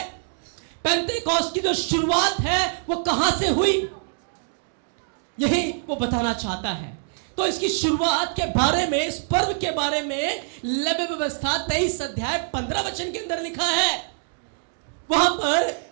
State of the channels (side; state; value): left; silent; digital silence